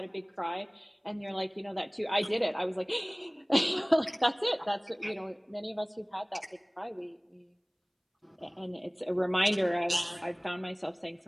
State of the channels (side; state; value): both; identical; correlation 1.00